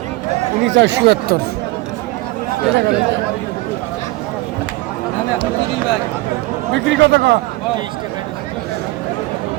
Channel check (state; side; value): quieter; left; 20.0 dB